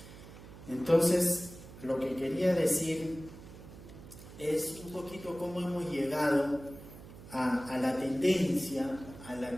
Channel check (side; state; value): right; noise; hum, 16 dB below the sound